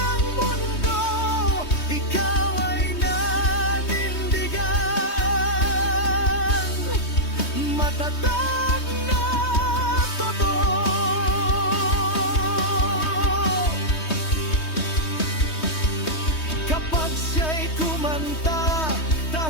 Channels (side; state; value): right; late; 3.2 ms